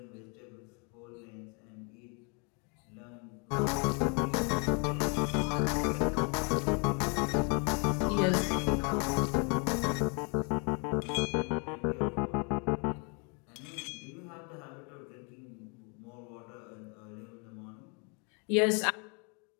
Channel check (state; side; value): quieter; right; 35.4 dB